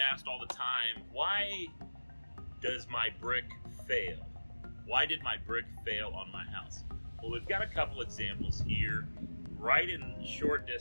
all the time, why does my brick fail? Why did my brick fail on my house? Well, we've got a couple examples here right in short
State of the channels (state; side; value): inverted; both; correlation -1.00